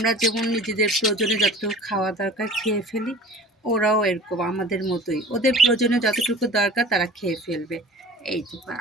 যেমন নিজেদের প্রয়োজনে যতটুকু খাওয়া দরকার খেয়ে ফেলি, ওরাও এরকম আমাদের মতোই, ওদের প্রয়োজনে যতটুকু দরকার তারা খেয়ে ফেলবে। এই দেখুন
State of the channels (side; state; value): both; normal; correlation 0.41